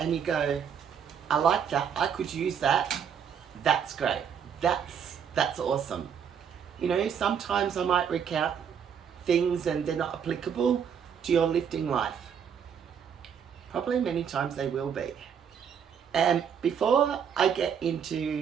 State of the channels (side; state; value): left; quieter; 7.7 dB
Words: you go, I like that, I could use that, that's great. That's awesome. You know, sometimes I might recount things and they're not applicable to your lifting life. Probably many times they will be. And before I get